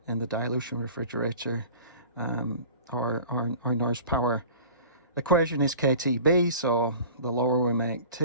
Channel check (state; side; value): inverted; both; correlation -0.42